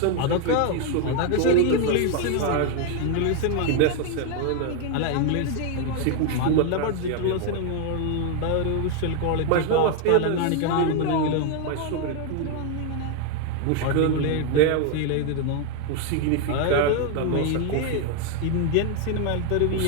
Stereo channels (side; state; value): both; different; correlation 0.00